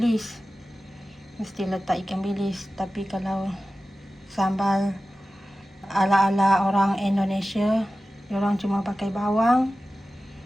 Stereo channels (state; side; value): normal; both; correlation 0.95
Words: mesti letak ikan bilis. Tapi kalau sambal ala-ala orang Indonesia, diorang cuma pakai bawang,